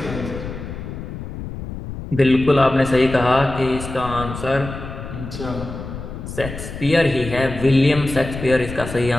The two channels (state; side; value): noise; left; rumble, 9 dB below the sound